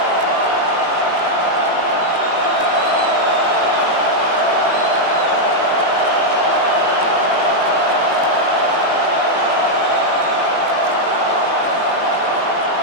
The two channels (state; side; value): late; right; 18 ms